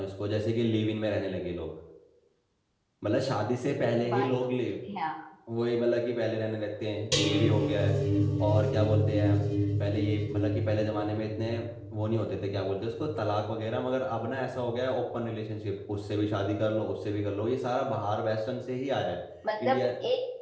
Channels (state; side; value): identical; both; correlation 1.00